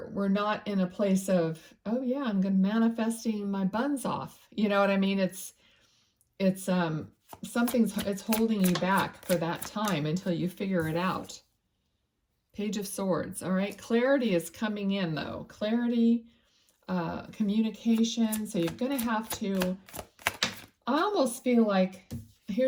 not in a place of, oh yeah, I'm going to manifesting my buns off. You know what I mean? It's it's holding you back for that time until you figure it out. Page of Swords. All right, clarity is coming in though. Clarity, communication. So you're going to have to, I almost feel like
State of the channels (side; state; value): both; identical; correlation 1.00